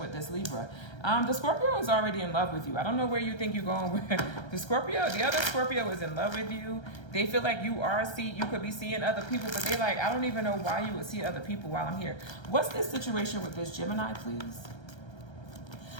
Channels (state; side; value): late; right; 1.3 ms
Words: this Libra. The Scorpio is already in love with you. I don't know where you think you're going with the Scorpio. The other Scorpio is in love with you. They feel like you could be seeing other people, but they like, I don't even know why you would see other people while I'm here. What's this situation with this Gemini, please?